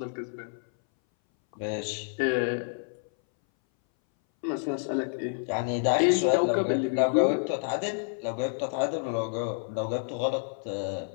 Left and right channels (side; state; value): right; silent; 59 dB below the other